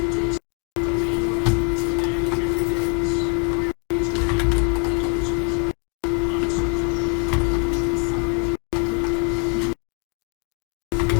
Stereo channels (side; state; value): right; quieter; 36.7 dB